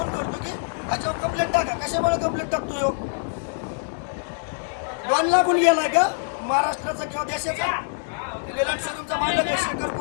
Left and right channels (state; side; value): silent; right; digital silence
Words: करतो की ह्याच्यावर कंप्लेंट टाका. कशामुळे कंप्लेंट टाकतो? 2 लाखून गेलाय का महाराष्ट्राचा किंवा देशाचा? लेलंड शोरूमचा मालक आहे शेखर